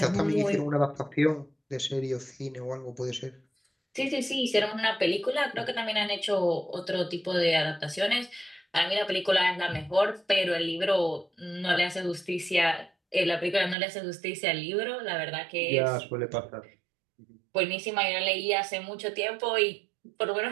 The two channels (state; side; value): drops out; left; at 13.8 s